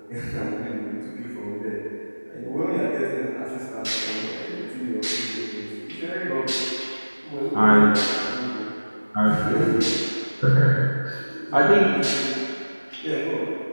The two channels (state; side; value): inverted; both; correlation -1.00